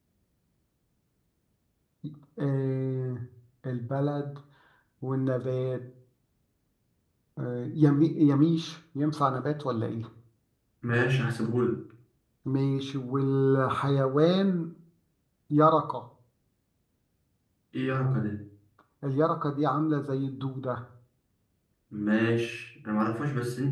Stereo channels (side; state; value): both; identical; correlation 1.00